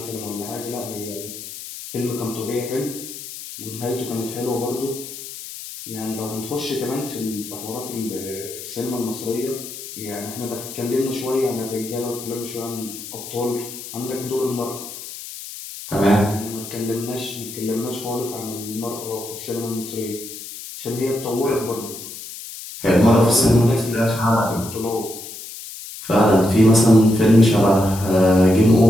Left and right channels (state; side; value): noise; left; hiss, 12 dB below the sound